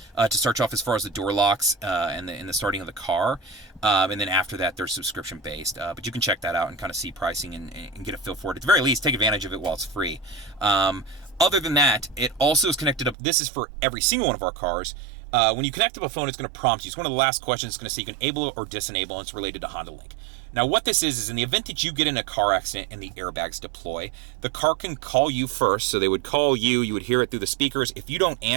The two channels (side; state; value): left; drops out; at 13.2 s